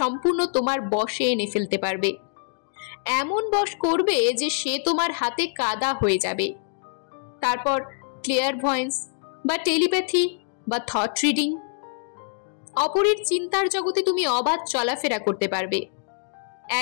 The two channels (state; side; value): silent; right; digital silence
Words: তোমার বশে এনে ফেলতে পারবে। এমন বশ করবে যে সে তোমার হাতে কাদা হয়ে যাবে। তারপর ক্লিয়ারভয়েন্স বা টেলিপ্যাথি বা থট রিডিং, অপরের চিন্তার জগতে তুমি অবাধ চলাফেরা করতে পারবে।